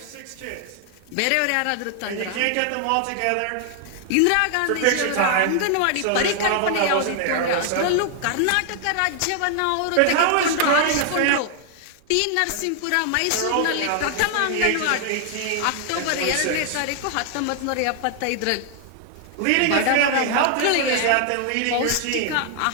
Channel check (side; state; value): both; different; correlation 0.00